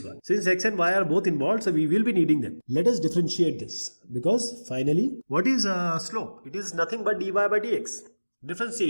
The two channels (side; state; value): both; inverted; correlation -1.00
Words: 1. Since x and y are both involved, so we will be needing them. Let us differentiate this because finally, what is slope? It is nothing but dy by dx.